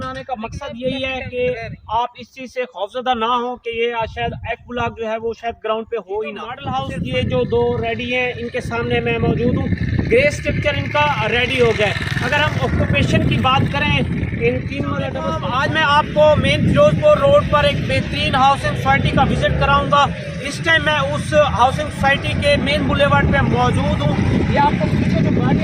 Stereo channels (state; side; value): identical; both; correlation 1.00